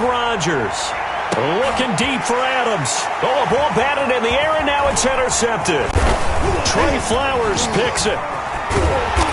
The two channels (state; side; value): identical; both; correlation 1.00